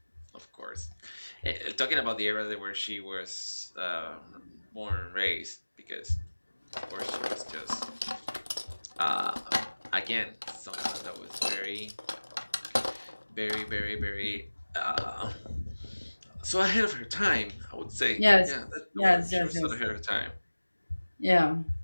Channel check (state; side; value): inverted; both; correlation -1.00